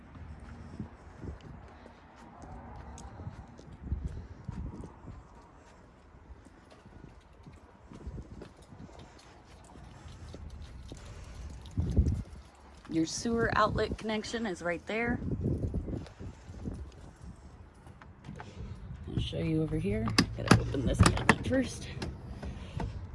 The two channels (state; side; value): identical; both; correlation 1.00